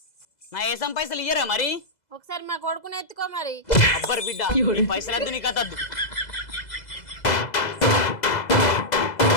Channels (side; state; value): right; late; 2.0 ms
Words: నా ఏసం పైసలు ఇయ్యరా మరి? ఒకసారి మా కొడుకుని ఎత్తుకో మరి. అబ్బర్ బిడ్డ, నీ పైసలు వద్దు, నీ కథ వద్దు.